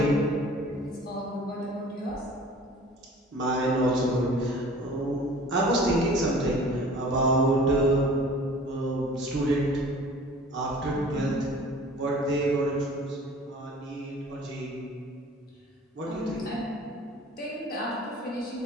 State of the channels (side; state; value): both; normal; correlation 0.46